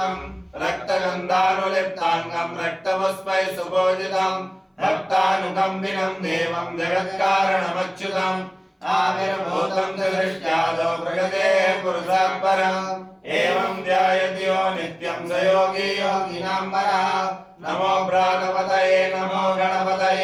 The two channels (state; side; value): identical; both; correlation 1.00